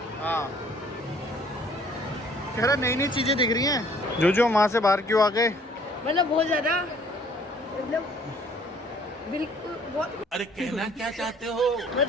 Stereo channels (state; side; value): normal; both; correlation 0.58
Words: हाँ, कह रहा नई नई चीजें दिख रही हैं। जो वहाँ से बाहर क्यों आ गए? मतलब बहुत ज्यादा, मतलब बिल्कुल बहुत अरे कहना क्या चाहते हो?